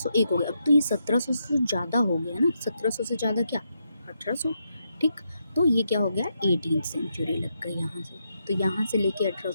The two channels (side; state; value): both; inverted; correlation -0.82